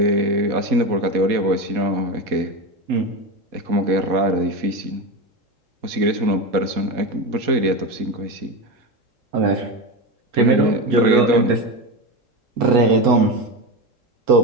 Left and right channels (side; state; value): left; late; 4.2 ms